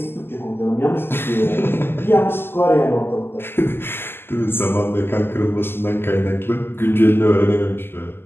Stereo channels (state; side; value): late; right; 0.11 ms